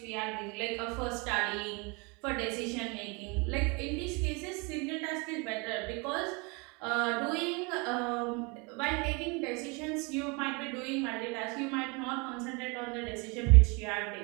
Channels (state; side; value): quieter; left; 29.8 dB